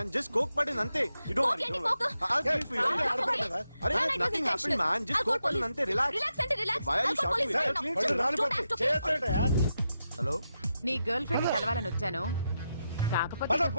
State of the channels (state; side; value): inverted; both; correlation -0.86